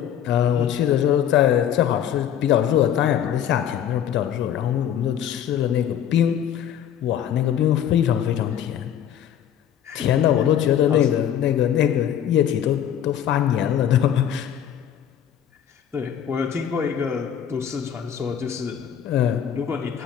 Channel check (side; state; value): right; quieter; 9.7 dB